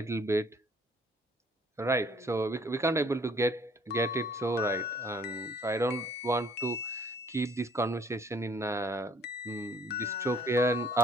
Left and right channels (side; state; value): both; normal; correlation 0.59